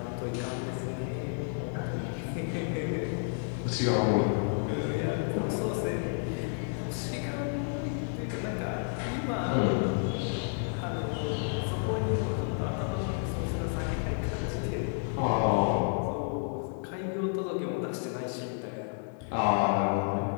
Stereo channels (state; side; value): silent; right; 57 dB below the other